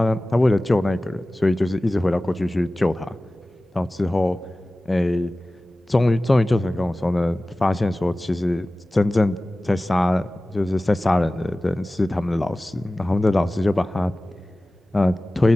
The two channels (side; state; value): both; normal; correlation 0.97